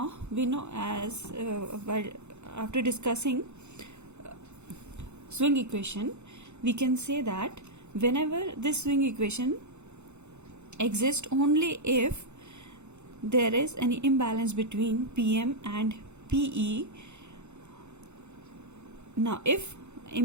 we know as while after discussing swing equation, we can say that whenever this swing equation exists only if there is any imbalance between PM and PE. Now if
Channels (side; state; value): left; late; 0.82 ms